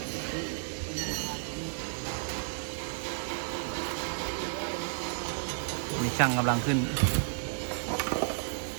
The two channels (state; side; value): silent; left; digital silence